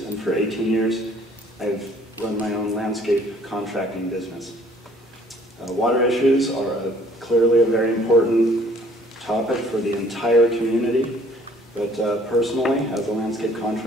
and for 18 years, I've run my own landscape contracting business. Water issues are clearly a very important topic for the entire community, but personally, as a landscape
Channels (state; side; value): normal; both; correlation 0.58